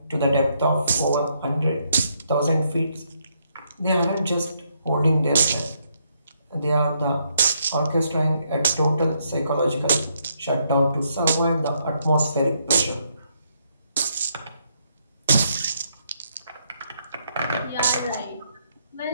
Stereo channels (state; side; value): inverted; both; correlation -0.75